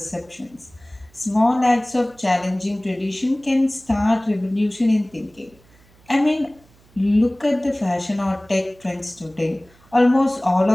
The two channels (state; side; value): noise; right; hum, 30 dB below the sound